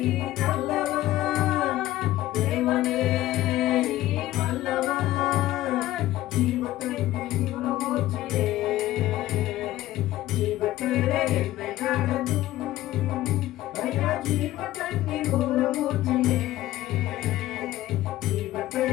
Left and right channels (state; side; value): quieter; right; 15.3 dB